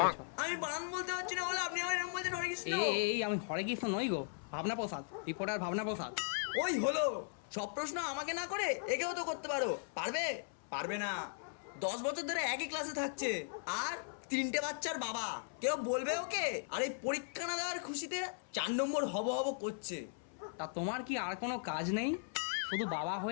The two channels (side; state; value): right; silent; 52 dB below the other